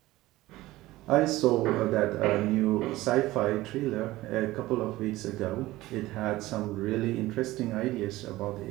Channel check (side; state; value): left; quieter; 17.6 dB